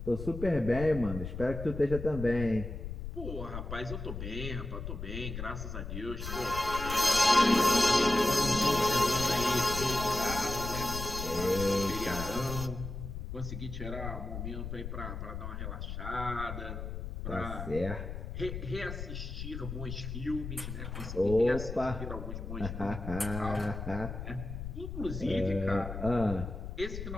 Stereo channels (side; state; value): left; noise; rumble, 7 dB below the sound